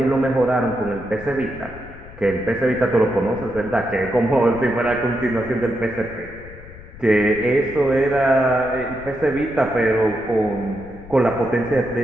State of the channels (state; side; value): noise; left; rumble, 17 dB below the sound